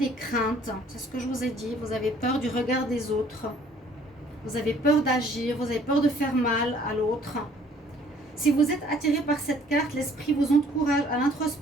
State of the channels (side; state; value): both; normal; correlation 0.58